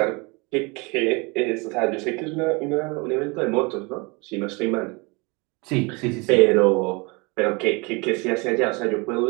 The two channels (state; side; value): quieter; left; 28.1 dB